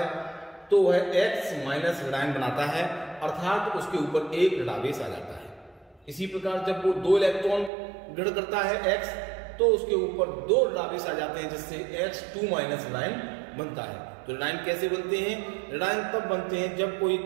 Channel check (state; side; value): drops out; left; at 7.7 s